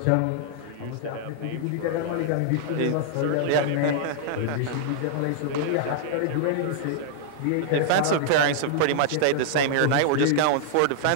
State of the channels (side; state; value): both; different; correlation -0.01